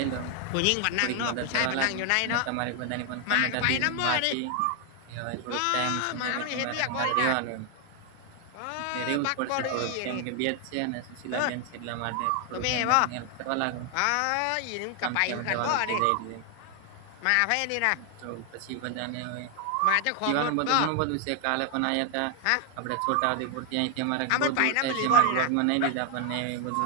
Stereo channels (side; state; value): both; different; correlation 0.00